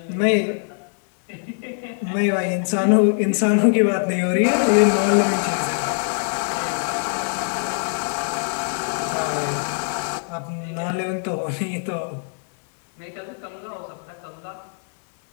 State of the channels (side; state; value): right; silent; 63 dB below the other